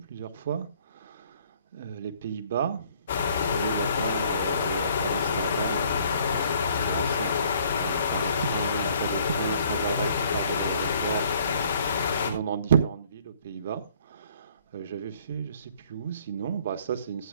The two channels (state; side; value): inverted; both; correlation -0.60